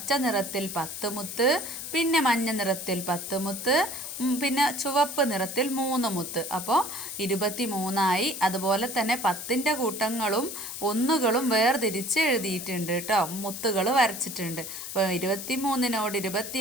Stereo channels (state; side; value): noise; left; hiss, 8 dB below the sound